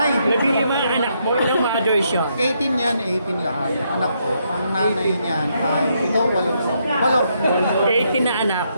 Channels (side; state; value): both; inverted; correlation -0.76